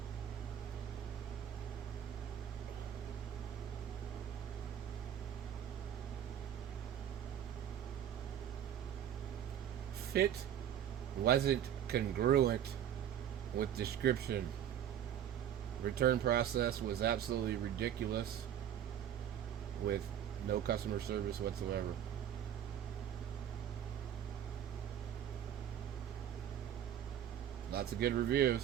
Fit wasn't congruent with description. Return process was absolutely ridiculous, with no customer service whatsoever. Lots of good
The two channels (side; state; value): left; quieter; 9.9 dB